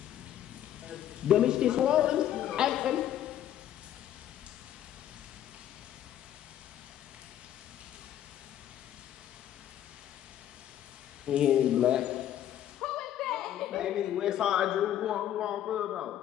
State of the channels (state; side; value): quieter; right; 11.4 dB